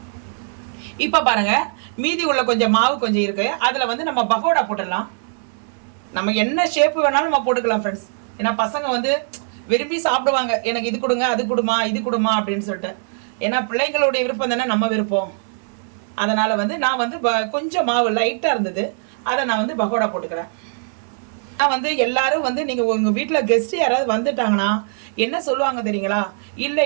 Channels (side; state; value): left; silent; digital silence